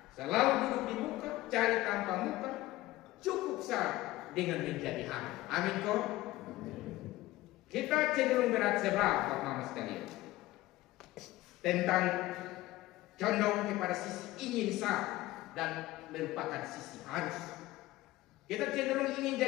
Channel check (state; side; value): quieter; right; 17.3 dB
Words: selalu duduk di muka, cari tanpa muka, cukup sah dengan menjadi hamba. Amin kok. Kita cenderung berat sebelah Pak Mama sekalian tentang condong kepada sisi ingin sah dan merupakan sisi harus. Kita cenderung ingin